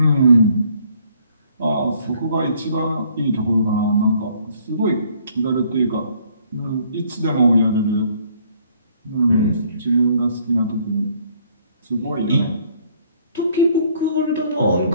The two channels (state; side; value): inverted; both; correlation -0.62